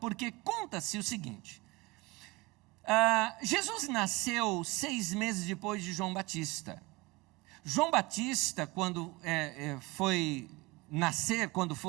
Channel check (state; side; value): quieter; left; 23.4 dB